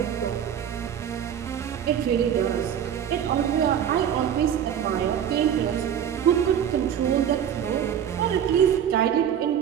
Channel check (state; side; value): quieter; left; 9.1 dB